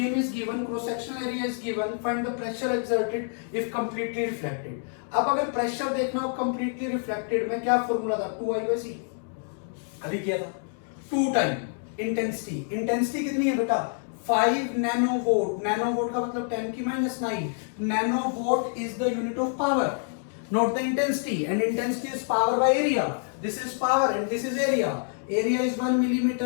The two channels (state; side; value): silent; right; 59 dB below the other